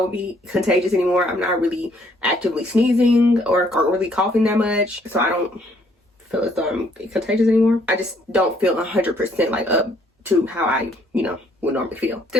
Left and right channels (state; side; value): normal; both; correlation 0.66